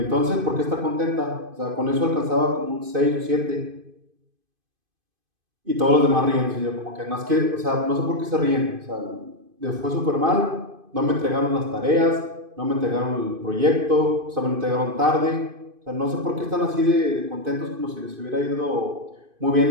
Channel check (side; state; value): left; late; 2.5 ms